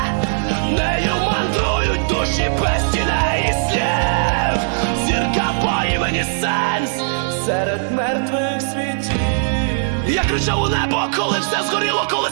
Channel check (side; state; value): left; silent; digital silence